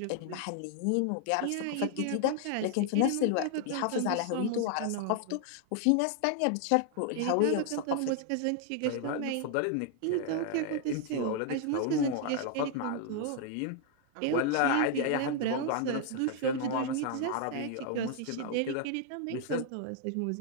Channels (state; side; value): different; both; correlation 0.00